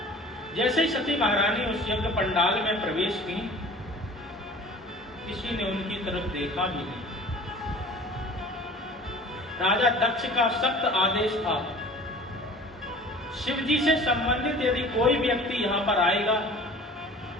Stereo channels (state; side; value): normal; both; correlation 0.45